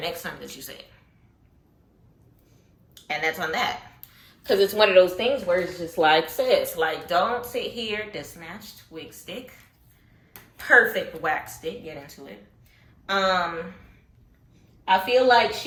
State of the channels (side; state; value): both; identical; correlation 1.00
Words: next time that you say it. And that's on that. Because it's one of those things where it's just like, sis, like, don't sit here, the snatched wig stick, perfect wax stick, get into it. I feel like